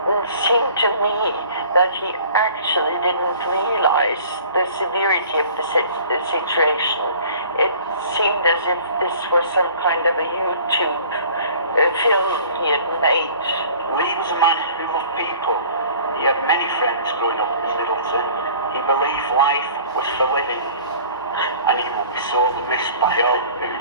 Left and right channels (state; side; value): inverted; both; correlation -0.48